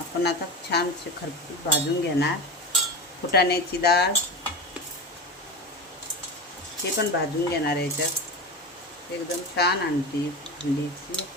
आता छान खरपूस भाजून घेणार. फुटाण्याची डाळ ते पण भाजून घेणार. याच्यात एकदम छान हंडीची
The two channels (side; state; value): both; normal; correlation 0.25